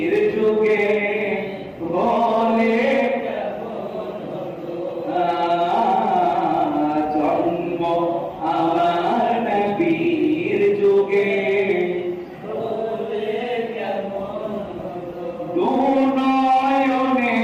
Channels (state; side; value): identical; both; correlation 1.00